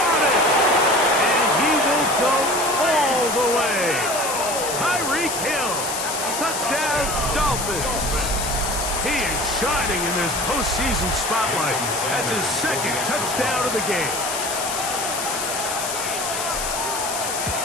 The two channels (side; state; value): left; noise; hiss, 4 dB below the sound